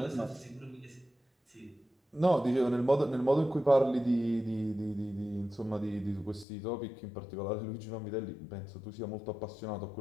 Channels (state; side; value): drops out; right; at 6.5 s